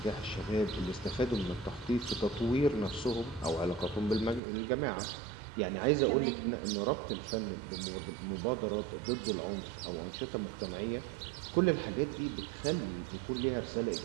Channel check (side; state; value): left; drops out; at 4.4 s